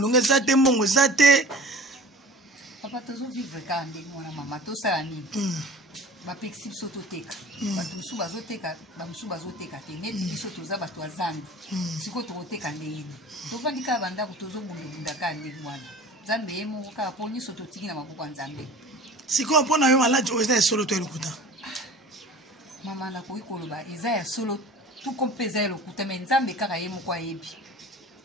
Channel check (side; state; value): both; normal; correlation 0.41